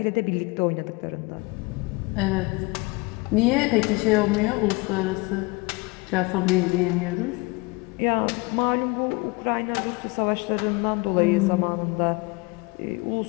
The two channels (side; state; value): right; quieter; 26.1 dB